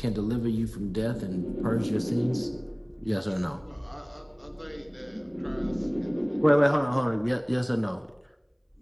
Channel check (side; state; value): both; identical; correlation 1.00